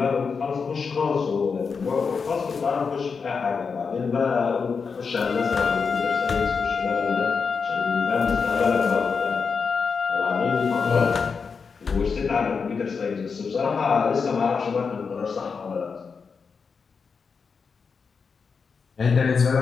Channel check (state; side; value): quieter; right; 5.4 dB